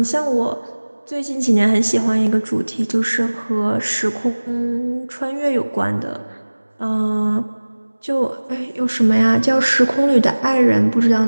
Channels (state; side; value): inverted; both; correlation -1.00